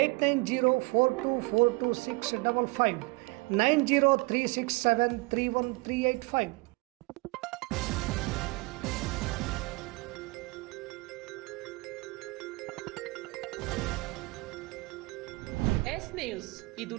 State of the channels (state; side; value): quieter; left; 25.4 dB